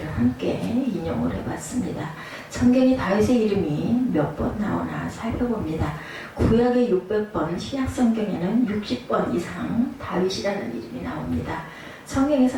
함께 인용을 해봤습니다. 성경이 다윗의 이름이 몇 번 나오나 살펴봅니다. 구약에 600번, 신약 성경에는 60번 이상 다윗이라는 이름이 나옵니다.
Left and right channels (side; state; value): both; identical; correlation 1.00